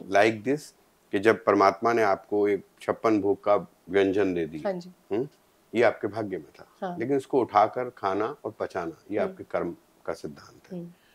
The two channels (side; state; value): both; identical; correlation 1.00